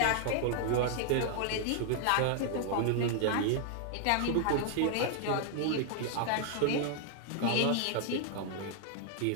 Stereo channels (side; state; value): both; different; correlation 0.00